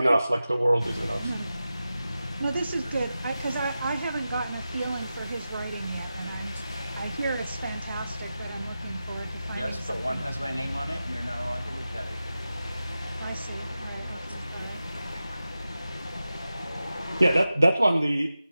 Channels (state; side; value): inverted; both; correlation -0.93